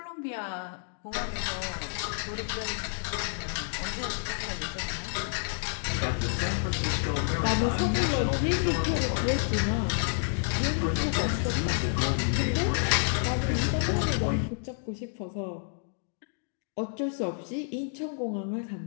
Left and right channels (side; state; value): right; silent; digital silence